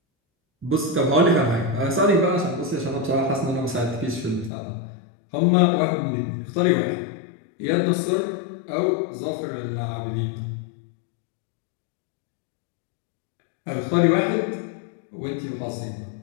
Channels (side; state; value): right; drops out; at 4.5 s